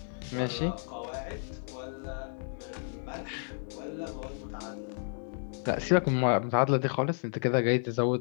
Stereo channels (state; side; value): silent; right; digital silence